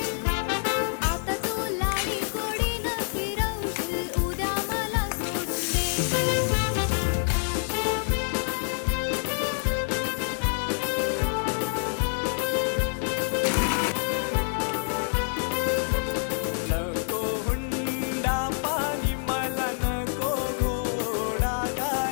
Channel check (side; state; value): right; silent; 58 dB below the other